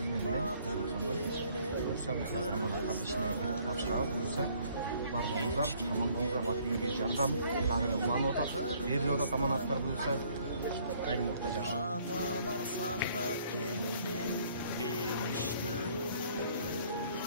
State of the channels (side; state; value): both; inverted; correlation -0.61